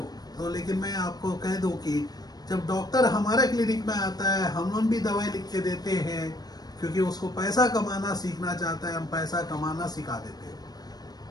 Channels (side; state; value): right; late; 0.19 ms